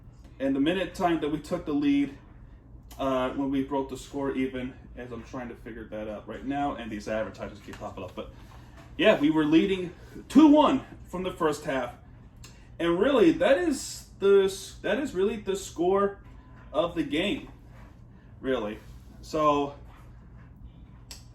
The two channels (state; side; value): identical; both; correlation 1.00